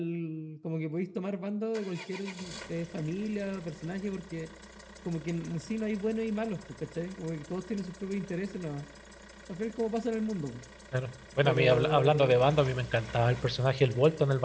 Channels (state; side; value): identical; both; correlation 1.00